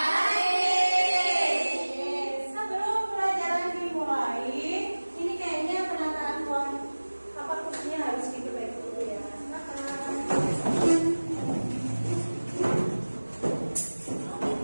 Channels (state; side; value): inverted; both; correlation -1.00